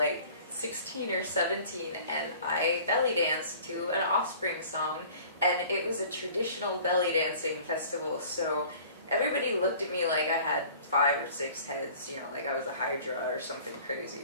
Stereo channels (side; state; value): both; inverted; correlation -0.48